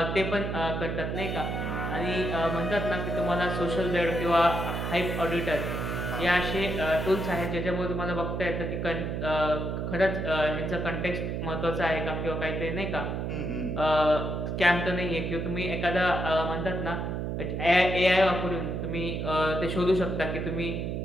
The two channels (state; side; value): noise; right; hum, 2 dB below the sound